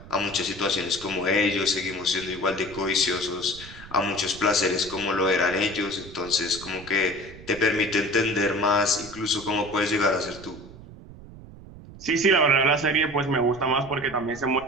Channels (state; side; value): noise; right; rumble, 17 dB below the sound